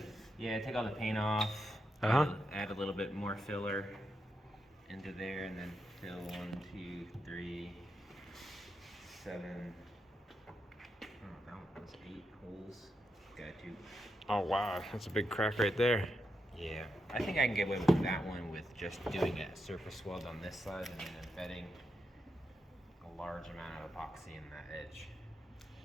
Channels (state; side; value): normal; both; correlation 0.84